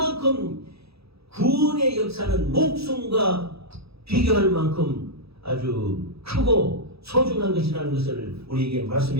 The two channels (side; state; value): left; late; 0.77 ms